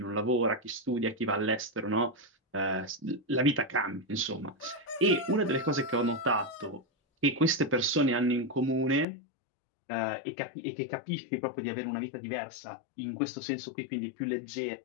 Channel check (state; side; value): drops out; right; at 9.1 s